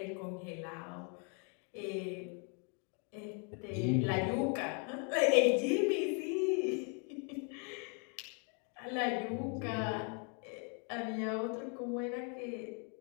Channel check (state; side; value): quieter; right; 37.9 dB